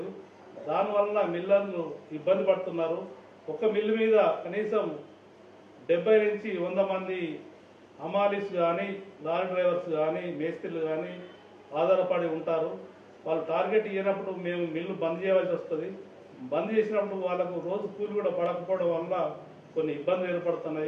దానివల్ల మిల్లర్లు ఇబ్బంది పడుతున్నారు. ఒక మిల్లు మీద కనీసం 70 నుంచి 100 మంది హమాలీస్ కానీ, లారీ డ్రైవర్స్ కానీ, మేస్త్రీలు కానీ ఆధారపడి ఉంటారు. వాళ్ళు టార్గెట్ ఇవ్వనప్పుడు మేము మిల్లు బంద్ చేయవలసి వస్తుంది. బంద్ చేసినప్పుడు వాళ్ళకు రోజు కూలి కూడా పడకపోవడం వల్ల కొన్ని ఇబ్బందులు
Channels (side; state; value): both; identical; correlation 1.00